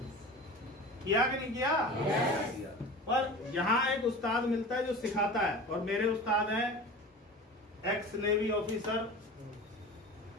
किया कि नहीं किया? पर यहाँ एक उस्ताद मिलता है जो सिखाता है, और मेरे उस्ताद हैं एक्स नेवी ऑफिसर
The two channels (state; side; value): normal; both; correlation 0.35